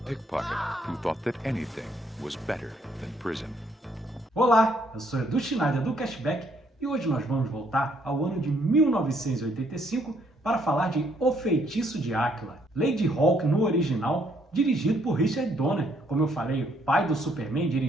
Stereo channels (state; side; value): normal; both; correlation 0.69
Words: who thought that anything was better than prison. Olá, eu sou Edu Schneider do Cashback e hoje nós vamos voltar ao ano de 1985 para falar de O Feitiço de Áquila, Lady Hawk no original, dirigido por Richard Donner. Como eu falei, o pai do Superman,